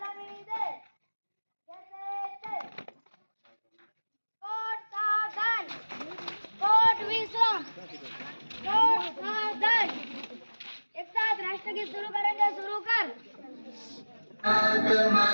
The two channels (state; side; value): inverted; both; correlation -1.00